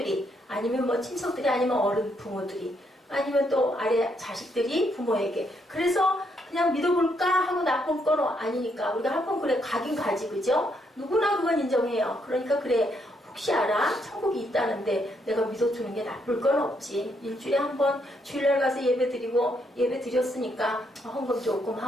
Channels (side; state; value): both; normal; correlation 0.75